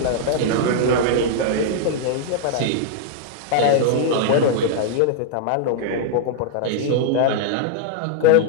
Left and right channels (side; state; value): both; different; correlation 0.00